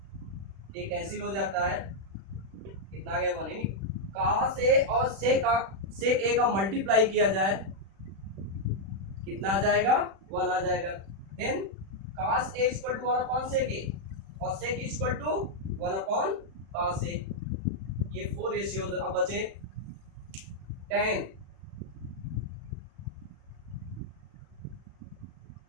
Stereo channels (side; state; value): left; late; 36 ms